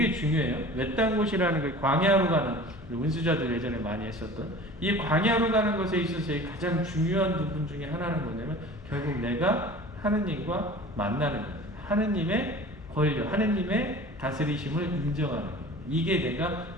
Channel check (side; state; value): both; normal; correlation 0.41